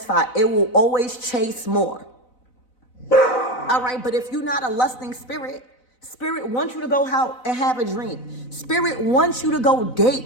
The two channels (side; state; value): right; late; 4.0 ms